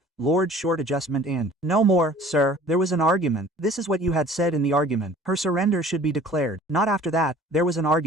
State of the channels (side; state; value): both; normal; correlation 0.49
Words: Lord short adjustment and no more, sir. There was an argument. This is what you had said in the argument. Her surrender should be declared. Not after that. There was an